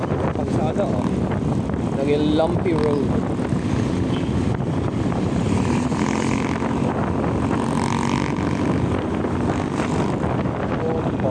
Kalsada oh. Naging lumpy road.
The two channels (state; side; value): identical; both; correlation 1.00